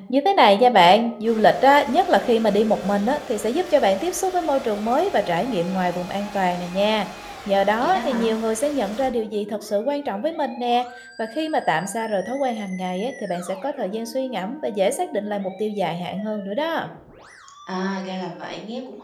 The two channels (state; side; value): identical; both; correlation 1.00